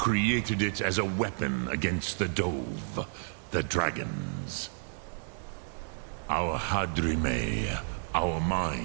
it as a weapon against the Dove, the dragons. Our Hadrime, our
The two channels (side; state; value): left; silent; digital silence